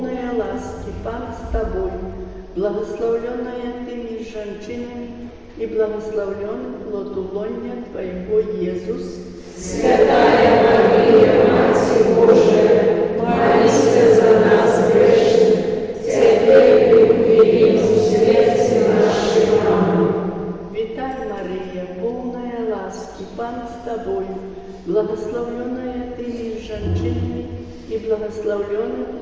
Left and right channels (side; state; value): both; identical; correlation 1.00